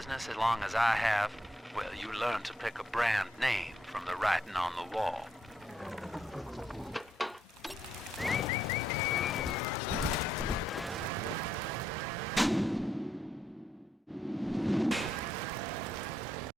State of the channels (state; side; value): normal; both; correlation 0.77